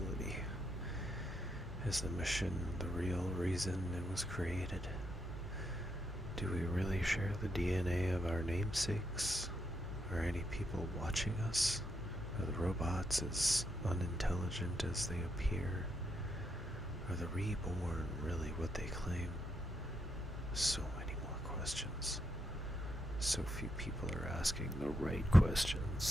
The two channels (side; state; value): both; normal; correlation 0.80